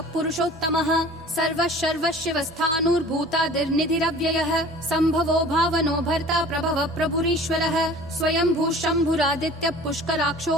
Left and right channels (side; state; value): both; normal; correlation 0.45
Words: पुरुषोत्तमः सर्वः सर्वशिवस्थाणुर्भूतादिर्निधिरव्ययः सम्भवो भावनो भर्ता प्रभवः प्रभुरीश्वरः स्वयंभू शम्भुरादित्यः पुष्कराक्षो